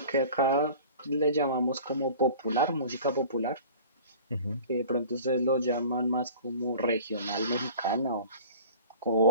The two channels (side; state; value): both; inverted; correlation -0.42